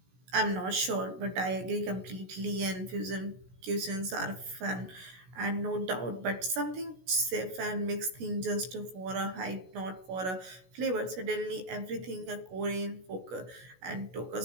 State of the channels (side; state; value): left; late; 16 ms